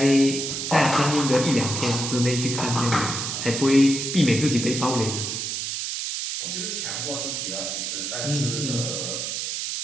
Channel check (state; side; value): noise; right; hiss, 3 dB below the sound